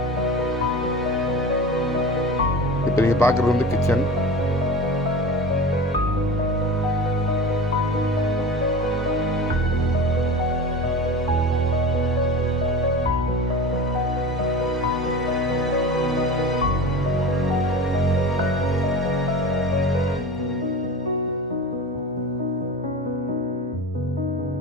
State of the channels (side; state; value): both; normal; correlation 0.33